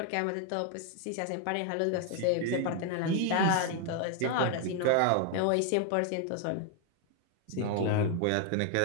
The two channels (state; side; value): different; both; correlation 0.00